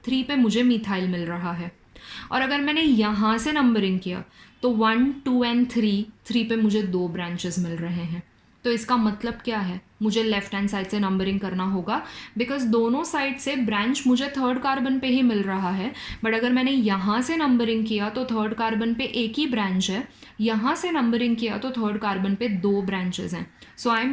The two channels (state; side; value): identical; both; correlation 1.00